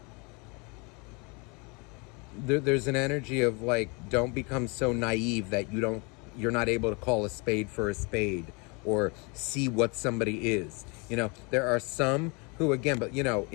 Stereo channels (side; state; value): right; quieter; 30.6 dB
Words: There's an energy of like, don't become so naive that you're not able to call a spade for a spade or see what somebody is. There are some who, again, but